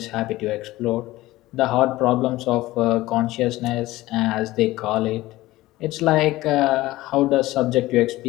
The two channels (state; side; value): quieter; right; 17.7 dB